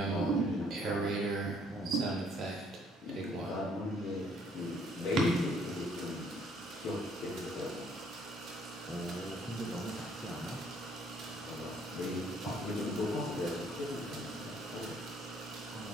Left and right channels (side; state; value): both; normal; correlation 0.63